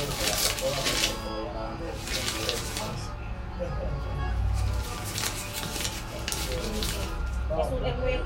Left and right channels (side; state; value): both; identical; correlation 1.00